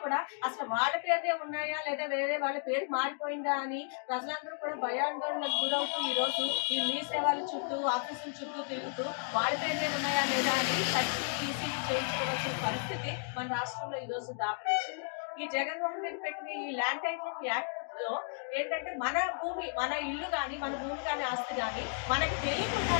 కూడా అసలు వాళ్ళ పేరునే ఉన్నాయా లేదా వేరే వాళ్ళ పేరు మారిపోయిందా అని ప్రజలందరూ కూడా భయాందోళనకు గురవుతూ ఈ రోజు ఈ మీ సేవల చుట్టూ ఆఫీసుల చుట్టూ తిరుగుతూ వాళ్ళ పేరునే ఉన్నాయా లేదా అని ఈసీలు చేయించుకోవాల్సిన పరిస్థితి మన రాష్ట్రంలో ఈ రోజు దాపరించింది. ఈ జగన్మోహన్ రెడ్డి పెట్టిన ఈ ల్యాండ్ టైటిలింగ్ యాక్ట్ లో ఏంటంటే మన భూమి, మన ఇల్లు కానీ, మన భూమి కానీ, ఆస్తి కానీ మనకి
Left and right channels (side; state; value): right; silent; 55 dB below the other